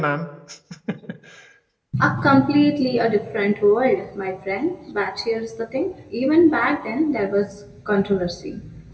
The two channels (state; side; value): identical; both; correlation 1.00